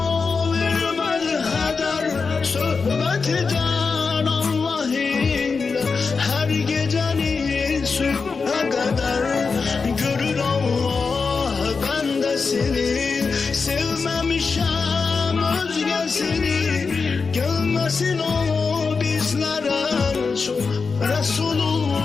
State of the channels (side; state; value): right; quieter; 4.8 dB